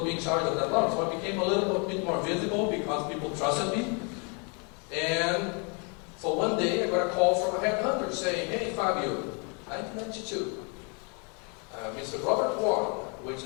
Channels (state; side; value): quieter; right; 35.3 dB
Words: me in charge of that launch. So I became a little bit more visible because people trusted me. And so one day I got a call from a headhunter saying, hey Fabio, 1992, Mr. Robert Warren, which